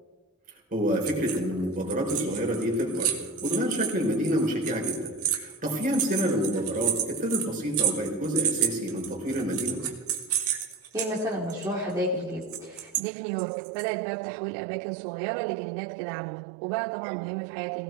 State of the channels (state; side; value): drops out; left; at 13.0 s